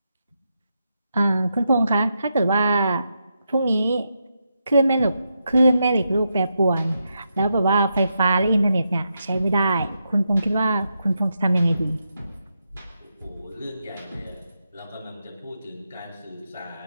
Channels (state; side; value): inverted; both; correlation -0.84